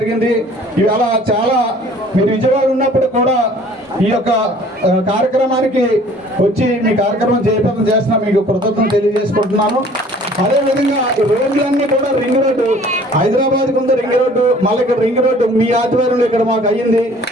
ఇవాళ చాలా మీరు విజయవాడ ఉన్నప్పుడు కూడా ఈ యొక్క కార్యక్రమానికి వచ్చి మీ కార్యక్రమం జయప్రదం చేస్తున్నా మీకు కృతజ్ఞతలు తెలియజేసుకుంటున్నాను. అదేవిధంగా రోడ్లన్నీ కూడా రింగ్ రోడ్డు, హైదరాబాద్కి ఉంది రింగ్ రోడ్డు, మళ్ళీ ఇక్కడ రింగ్ రోడ్డు మీ ఆధ్వర్యంలో ఇక్కడ మాకు అయ్యింది.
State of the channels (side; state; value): both; normal; correlation 0.52